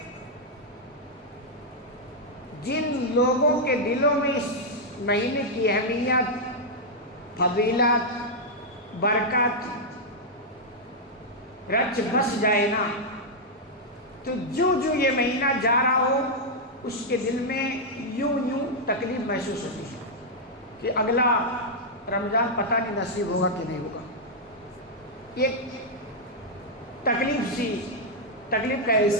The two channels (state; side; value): normal; both; correlation -0.04